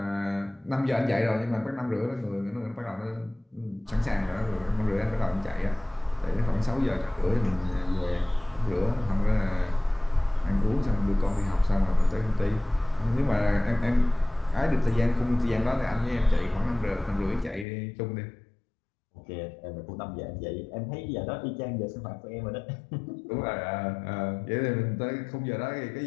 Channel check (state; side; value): drops out; right; at 17.7 s